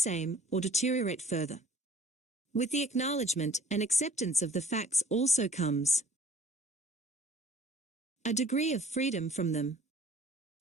or deteriorate further. With the acknowledgement and acceptance of the facts also comes a degree of freedom from them.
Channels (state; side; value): normal; both; correlation 0.53